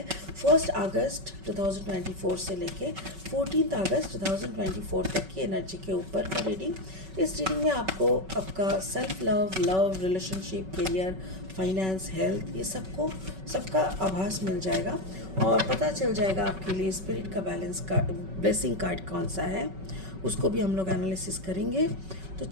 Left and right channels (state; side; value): late; left; 5.3 ms